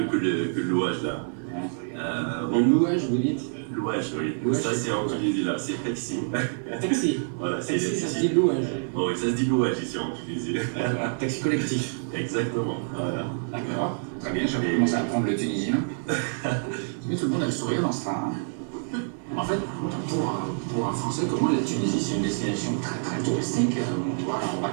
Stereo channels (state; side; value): silent; left; 57 dB below the other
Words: que le louage là. Le louage, vous dites? Louage, oui. Louage, Ça, c'est c'est en quoi? Tunisie là. C'est taxi. Taxi. Voilà, c'est Taxi, ça se dit louage. Oh, oui, ça se dit louage ici en Tunisie. Taxi collectif. Exactement. Voilà. D'accord. Très bien, j'avais commencé à apprendre le tunisien. Mais tout le monde a le sourire dans ce train. En fait, pour un Français, comment la Tunisie, c'est une destination très touristique. On va en